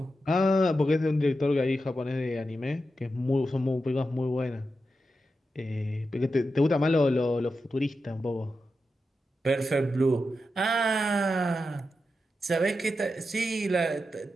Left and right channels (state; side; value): normal; both; correlation 0.89